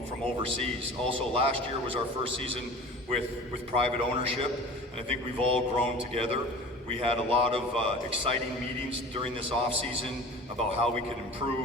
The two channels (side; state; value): both; normal; correlation 0.39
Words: overseas. Also, last year was our first season with private ownership, and I think we've all grown together. We had a lot of exciting meetings during this off season about how we could